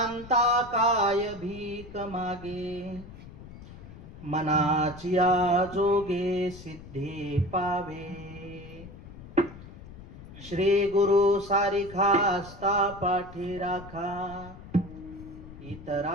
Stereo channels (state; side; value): noise; left; rumble, 16 dB below the sound